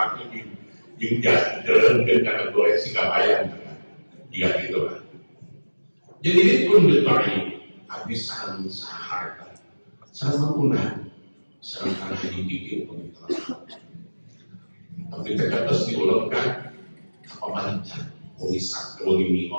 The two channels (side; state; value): both; inverted; correlation -1.00